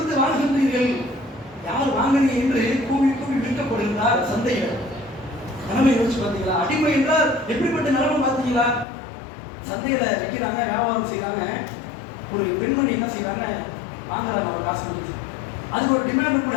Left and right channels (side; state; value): right; drops out; at 8.8 s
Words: வாங்குகின்றீர்கள், யார் வாங்குறீங்க என்று கூவி கூவி விற்கப்படுகிறார் சந்தையில். நிலைமை யோசிச்சு பார்த்தீங்களா? அடிமை என்றால் எப்படிப்பட்ட நிலைமை பார்த்தீங்களா? சந்தையில விற்கிறாங்க, வியாபாரம் செய்யறாங்க. ஒரு பெண்மணி என்ன செய்யறாங்க, வாங்குறாங்க அவர் காசு கொடுத்து. அதுக்கு ஒரு டிமாண்ட்